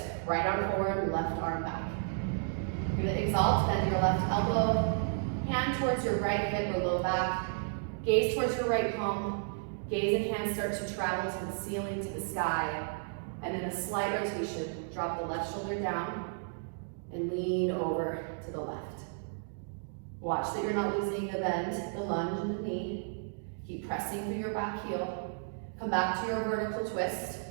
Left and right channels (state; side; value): silent; left; digital silence